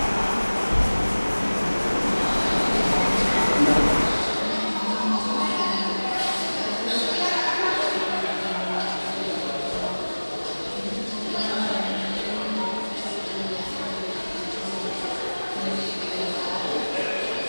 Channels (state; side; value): inverted; both; correlation -1.00